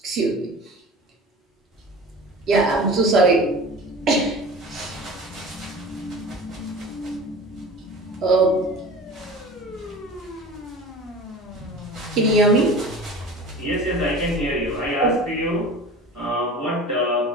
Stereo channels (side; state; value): both; normal; correlation 0.37